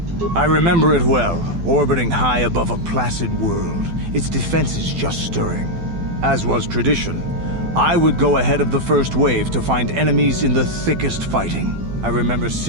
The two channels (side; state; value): left; late; 12 ms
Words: I remember it well, orbiting high above a placid world, its defenses just stirring. As was tradition, I would go ahead of the first wave to find enemies in the thickest fighting. I remember